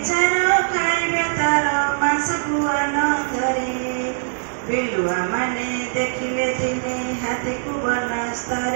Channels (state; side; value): silent; left; 60 dB below the other